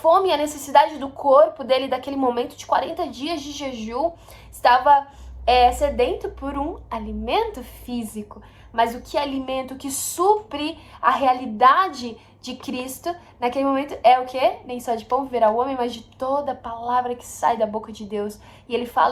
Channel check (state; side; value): identical; both; correlation 1.00